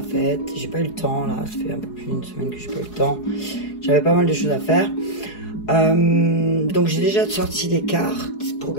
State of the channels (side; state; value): right; late; 4.8 ms